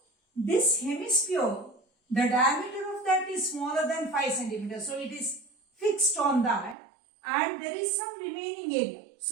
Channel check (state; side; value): drops out; left; at 6.8 s